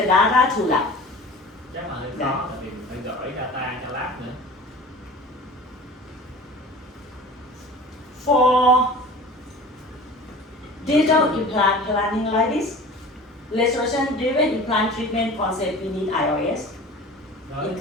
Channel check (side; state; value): both; normal; correlation 0.39